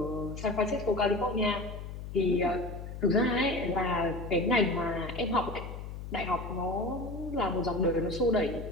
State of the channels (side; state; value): left; noise; hum, 9 dB below the sound